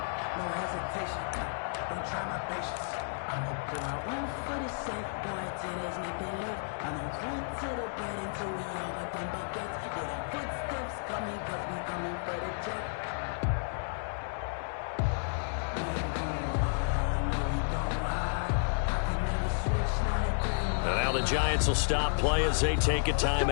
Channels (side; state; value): right; silent; digital silence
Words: Now the Giants will stop play as they take a